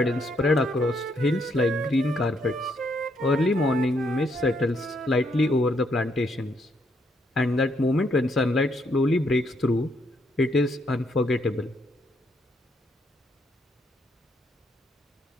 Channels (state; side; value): normal; both; correlation 0.74